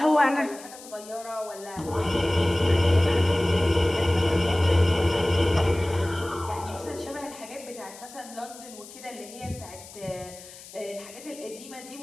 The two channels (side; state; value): left; noise; hiss, 17 dB below the sound